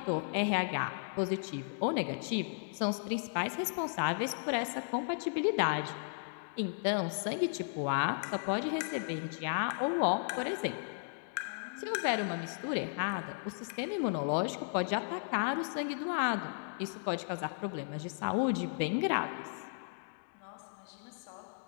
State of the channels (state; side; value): silent; right; digital silence